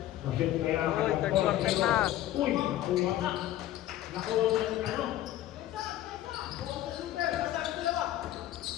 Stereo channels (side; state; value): right; quieter; 13.7 dB